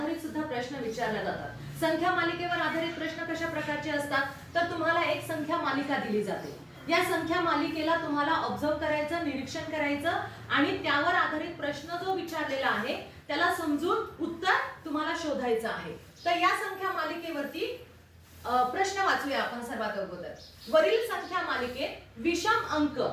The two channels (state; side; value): identical; both; correlation 1.00